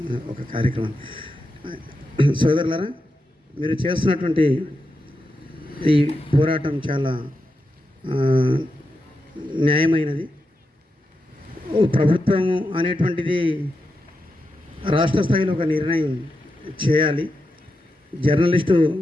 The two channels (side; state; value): both; normal; correlation 0.87